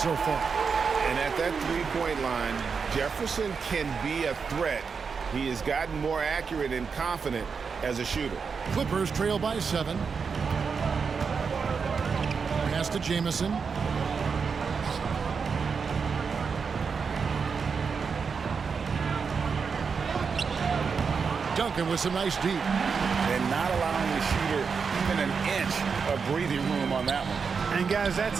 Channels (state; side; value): quieter; left; 5.6 dB